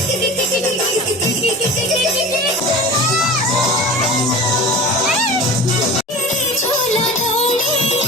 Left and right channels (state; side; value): normal; both; correlation 0.35